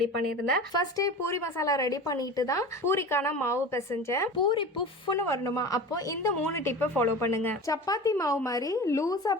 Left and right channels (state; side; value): normal; both; correlation 0.33